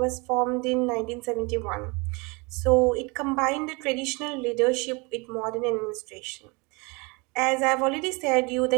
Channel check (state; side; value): quieter; left; 28.3 dB